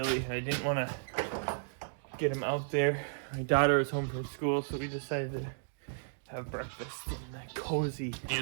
I didn't want to get them out there. My daughter was home from school, so we decided to have breakfast in the cozy. Hey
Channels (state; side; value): silent; left; digital silence